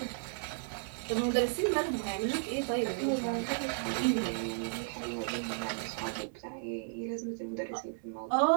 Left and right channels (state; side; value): silent; left; 55 dB below the other